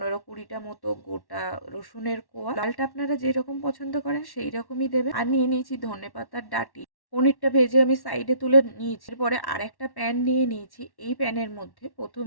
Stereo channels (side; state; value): right; late; 1.1 ms